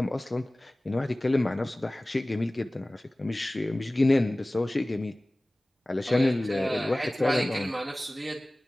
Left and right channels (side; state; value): both; normal; correlation 0.98